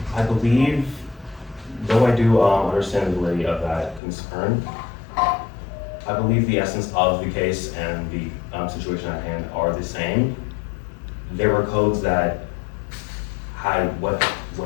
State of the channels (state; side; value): drops out; right; at 4.0 s